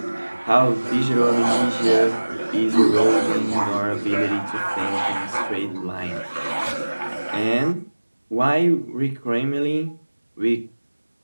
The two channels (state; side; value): inverted; both; correlation -1.00